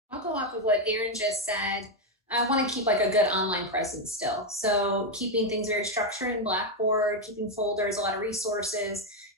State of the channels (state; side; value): normal; both; correlation 0.05